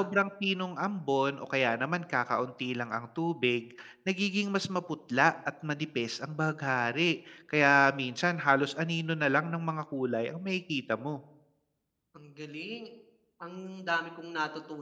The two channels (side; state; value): both; identical; correlation 1.00